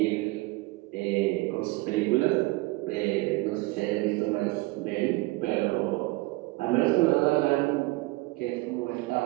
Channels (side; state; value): left; quieter; 22.1 dB